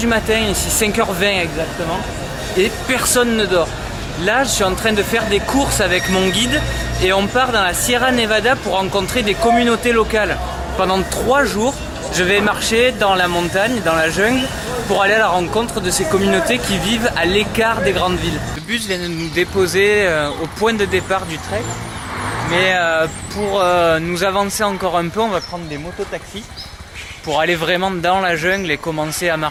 matin, ici 5h20 exactement, et personne ne dort. Là, je suis en train de faire des courses avec mon guide et on part dans la Sierra Nevada pour rencontrer des communautés locales. Pendant 3 jours, je vais marcher dans la montagne, dans la jungle, pour aller à la rencontre de ces communautés qui vivent à l'écart des grandes villes. Le bus vient de nous déposer au point de départ du trek, mais pour nous avancer encore un peu, on va prendre des mototaxis pour aller vraiment dans la jungle et commencer à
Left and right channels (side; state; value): both; identical; correlation 1.00